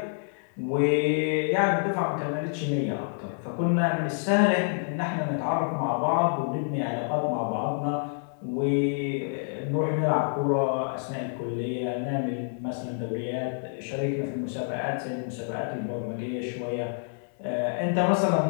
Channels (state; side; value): silent; right; 58 dB below the other